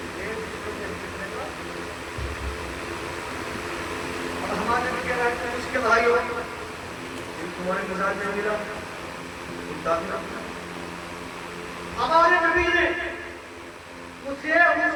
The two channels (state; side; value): identical; both; correlation 1.00